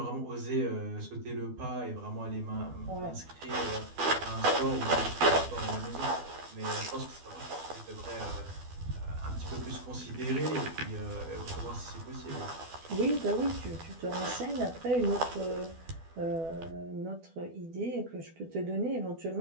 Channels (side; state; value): left; late; 12 ms